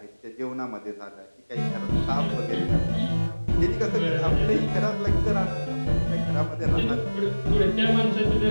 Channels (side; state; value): both; inverted; correlation -1.00